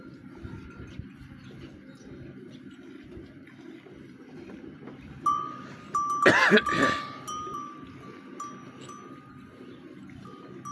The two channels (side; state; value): both; identical; correlation 1.00